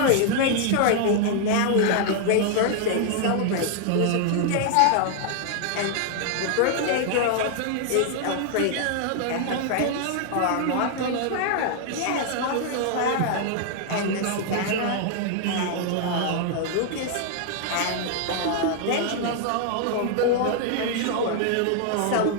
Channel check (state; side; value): different; both; correlation 0.00